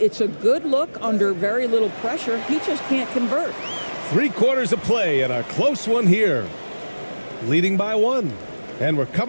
It's a good look under very little pressure. He just can't convert. 3 quarters of play and a close one here. Leading by 1. And we're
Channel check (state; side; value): inverted; both; correlation -1.00